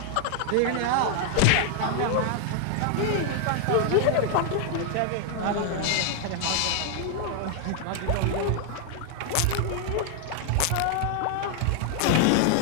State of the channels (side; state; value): both; different; correlation 0.00